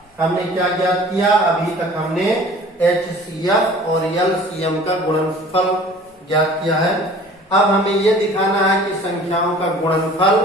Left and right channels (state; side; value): normal; both; correlation 0.47